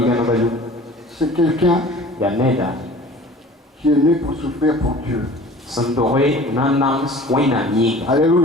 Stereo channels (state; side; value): normal; both; correlation 0.45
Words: c'est quelqu'un qui est né pour souffrir pour Dieu.